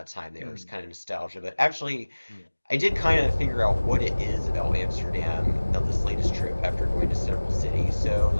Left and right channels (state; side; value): inverted; both; correlation -1.00